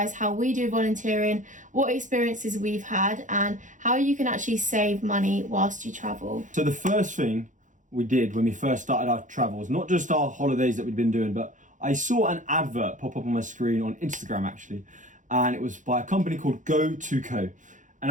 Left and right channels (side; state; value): left; late; 0.37 ms